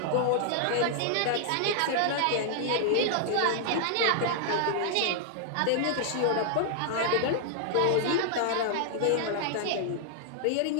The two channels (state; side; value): different; both; correlation -0.01